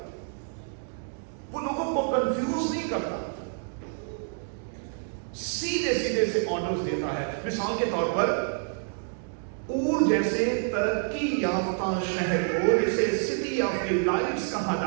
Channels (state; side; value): silent; left; 59 dB below the other